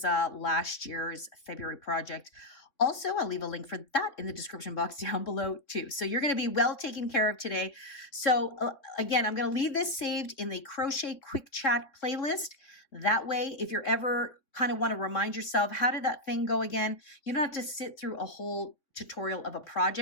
last year's February project. Also, I'll leave a link for that in the description box down below too. So you're going to be well taken care of today. So again, I'm going to leave this saved in the Crochet Quick Chat playlist. That way, if you're ever kind of want to remind yourself, how did that thing go again? You don't have to sit through a whole tutorial of a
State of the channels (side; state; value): right; late; 3.6 ms